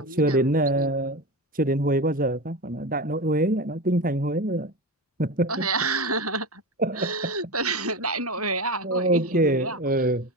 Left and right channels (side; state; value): both; normal; correlation 0.22